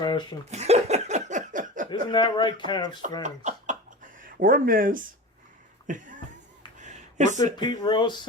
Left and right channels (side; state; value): both; normal; correlation 0.31